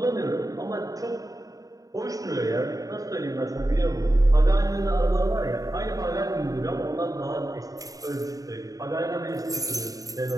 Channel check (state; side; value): late; left; 0.17 ms